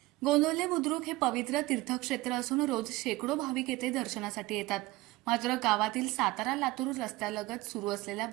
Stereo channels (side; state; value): left; quieter; 19.7 dB